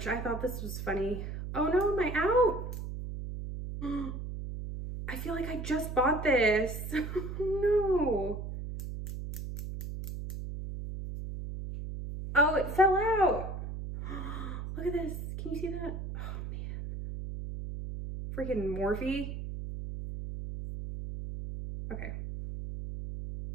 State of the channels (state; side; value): noise; right; hum, 6 dB below the sound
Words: I thought this was funny. Oh no, am I out? I feel like I just bought this. No. Oh, it fell out. Look at this. Can you see that? Oh man. Freaking Morphe. Okay.